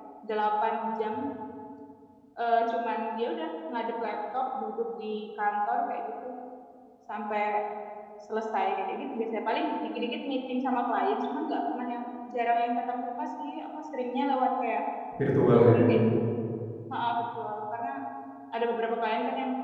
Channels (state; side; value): identical; both; correlation 1.00